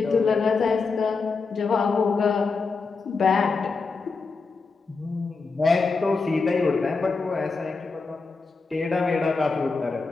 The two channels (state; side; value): quieter; right; 4.4 dB